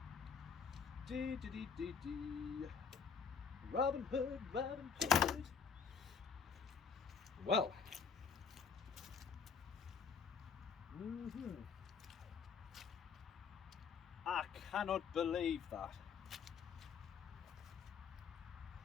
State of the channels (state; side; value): quieter; right; 6.2 dB